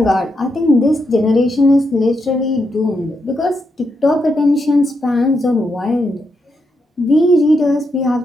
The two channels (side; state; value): both; normal; correlation 0.82